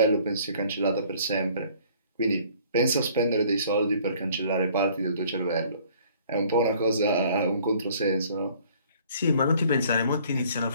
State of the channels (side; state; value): both; inverted; correlation -0.56